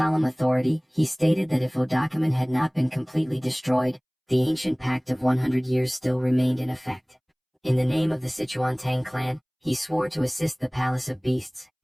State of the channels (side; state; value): both; identical; correlation 1.00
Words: authority, he stated that if Odakumen had not been completely destroyed, the ancient pact of 100 years still remained in effect. In the name of the Sichuan Tang clan, he swore to assist the Palace of Beasts,